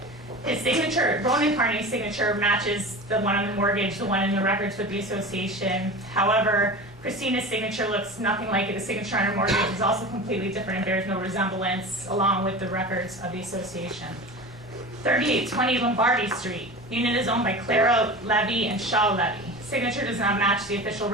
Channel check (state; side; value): normal; both; correlation 0.32